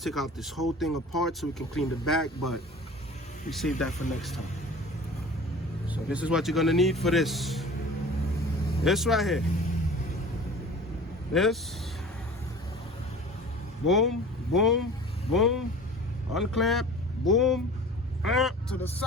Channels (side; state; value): both; normal; correlation 0.41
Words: take out this whole thing apart so we can clean the back, but we save that for next time. So this is what you're gonna need for this. This right here. This. Boom, boom, boom. Unclamp, boom. To the